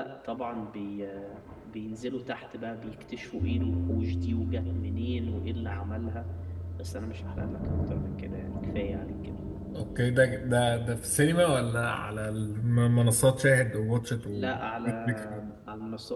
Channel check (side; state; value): both; identical; correlation 1.00